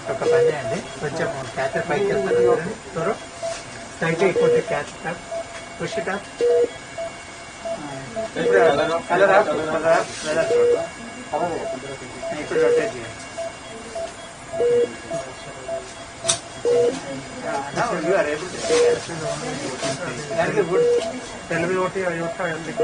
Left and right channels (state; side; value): identical; both; correlation 1.00